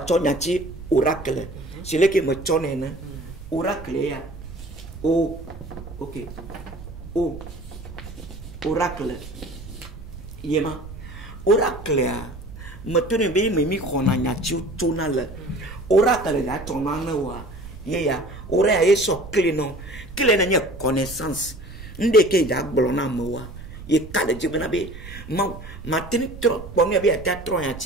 ya ti oracle. C'est le qui me tonne oracle ya. Oh, ok. Oh, oracle. Yema. Oracle ya. Maintenant be me mi kona nya ti tona le oracle da tona na wa ye ya ora ya so clé non clé na nya connaissance nde ke ja gbolo na mo wa ye ka de jibna be ma tin trop pour me be ta trop ya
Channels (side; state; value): right; noise; rumble, 13 dB below the sound